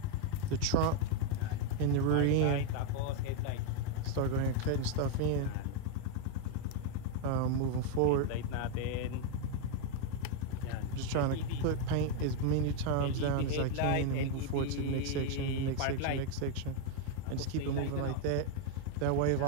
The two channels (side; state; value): both; different; correlation 0.01